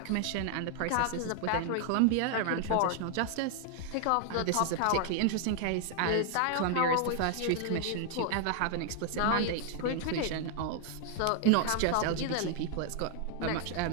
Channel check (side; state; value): both; different; correlation 0.00